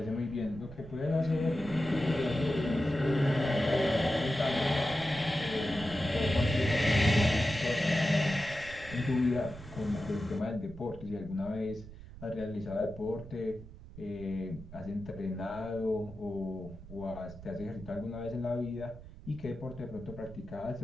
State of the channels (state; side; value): noise; right; rumble, 15 dB below the sound